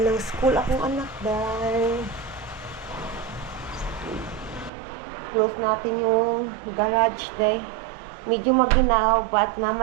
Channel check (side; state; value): left; drops out; at 4.7 s